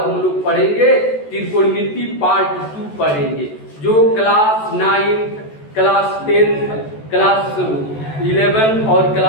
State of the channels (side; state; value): right; late; 14 ms